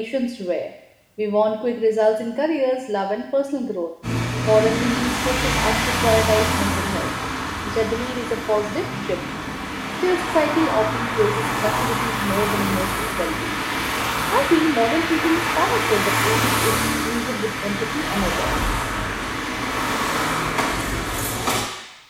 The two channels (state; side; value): identical; both; correlation 1.00